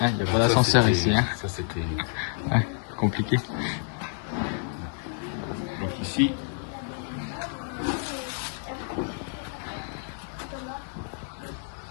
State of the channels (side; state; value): right; silent; 59 dB below the other